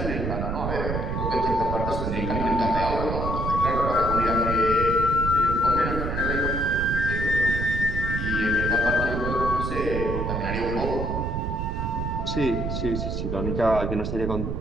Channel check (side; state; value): right; noise; rumble, 2 dB below the sound